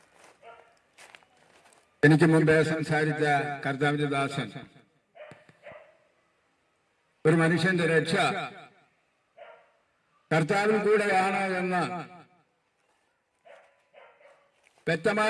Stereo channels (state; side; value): identical; both; correlation 1.00